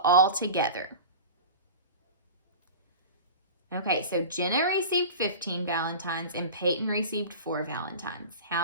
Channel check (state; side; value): inverted; both; correlation -0.32